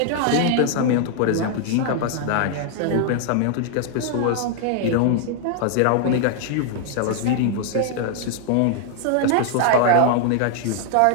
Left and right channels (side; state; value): both; different; correlation 0.00